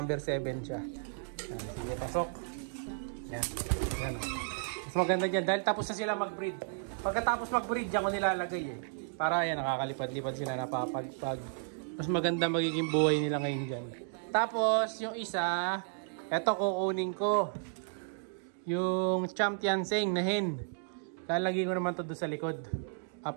7 siya. Ayan. Sige, pasok. Ayan. Ayan. Mas maganda dyan dahil tapos na sila mag-breed. Pagkatapos mag-breed, dyan ko nilalagay para yan, nakakalipad-lipad sila, napapagpag. Mas maganda magiging buhay nila ngayon dyan. Tapos, yung isa, eto kukunin ko. Yung Champion Seng na hen. Lalagay ko naman to doon sa likod.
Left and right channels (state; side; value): silent; left; digital silence